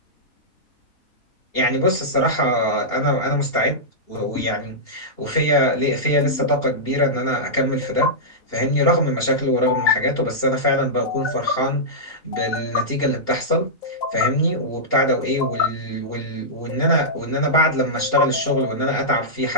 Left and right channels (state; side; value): late; right; 2.8 ms